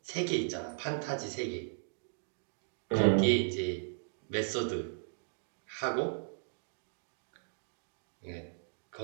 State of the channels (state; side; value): silent; left; digital silence